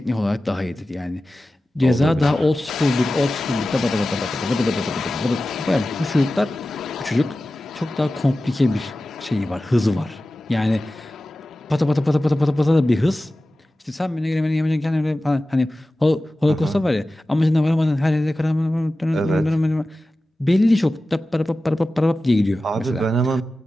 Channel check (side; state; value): both; normal; correlation 0.95